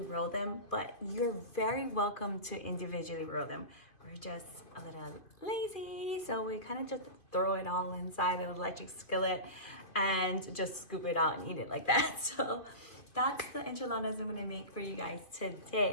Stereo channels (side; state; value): right; late; 2.7 ms